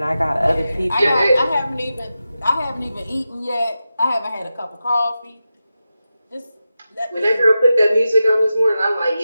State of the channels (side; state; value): both; inverted; correlation -0.91